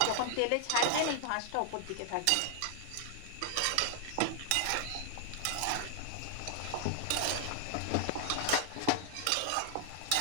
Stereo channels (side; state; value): both; different; correlation 0.00